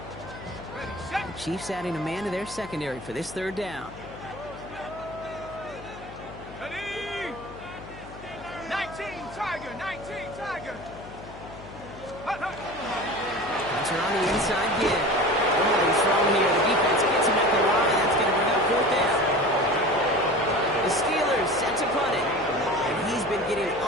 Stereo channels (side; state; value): left; noise; hum, 16 dB below the sound